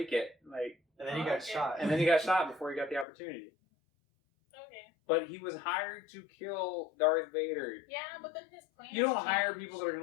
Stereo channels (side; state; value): right; drops out; at 3.1 s